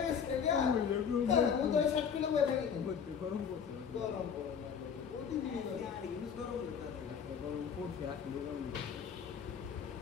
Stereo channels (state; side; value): quieter; right; 7.1 dB